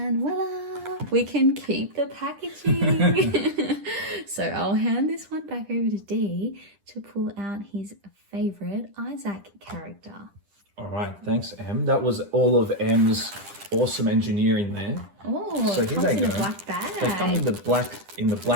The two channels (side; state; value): left; late; 10 ms